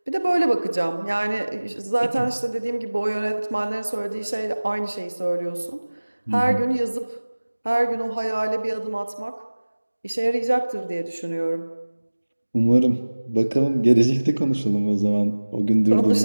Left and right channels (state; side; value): inverted; both; correlation -1.00